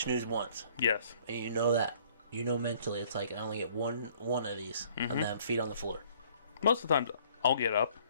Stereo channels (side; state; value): both; inverted; correlation -0.59